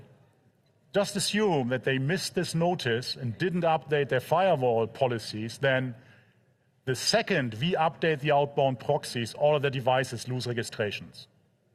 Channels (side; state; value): both; identical; correlation 1.00